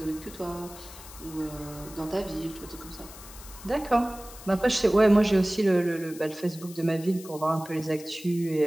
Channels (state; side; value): noise; left; hiss, 17 dB below the sound